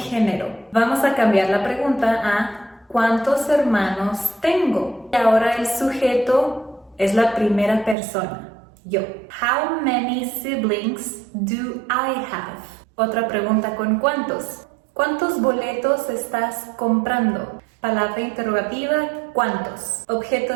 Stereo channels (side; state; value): left; drops out; at 8.0 s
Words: Vamos a cambiar la pregunta a ¿cuántos hermanos tengo? Y ahora el sujeto es la primera persona, yo. How many siblings do I have? Otra pregunta con ¿cuántos? ¿Cuántos boletos estás comprando? Palabra interrogativa, ¿cuántos? Objeto